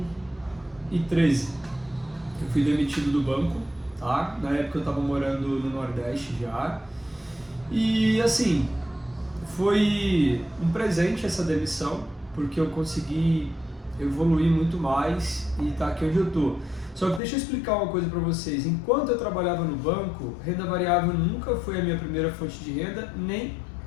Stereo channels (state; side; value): drops out; right; at 17.2 s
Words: Eu fui demitido do banco, tá? Na época eu estava morando no Nordeste já. E assim, foi um presente essa demissão, porque eu consegui evoluir muito mais e tá aqui onde eu tô. Só que deixa eu explicar uma coisa para vocês. Enquanto eu trabalhava no banco, renda variável nunca foi a minha primeira fonte de renda, nem